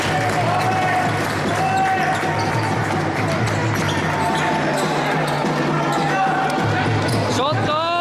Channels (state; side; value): identical; both; correlation 1.00